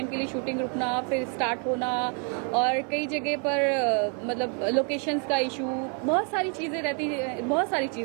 के लिए शूटिंग रुकना, फिर स्टार्ट होना, और कई जगह पर मतलब लोकेशंस का इशू, बहुत सारी चीज़ें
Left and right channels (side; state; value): left; quieter; 39.0 dB